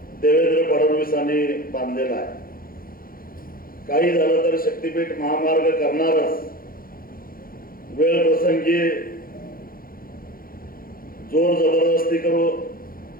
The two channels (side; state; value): right; late; 0.42 ms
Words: देवेंद्र फडणवीसांनी बांधलेला आहे. काही झालं तर शक्तीपीठ महामार्ग करणारच. वेळ प्रसंगी जोर जबरदस्ती करू,